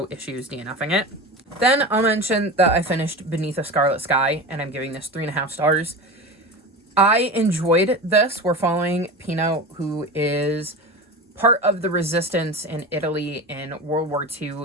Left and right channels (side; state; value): both; normal; correlation 0.28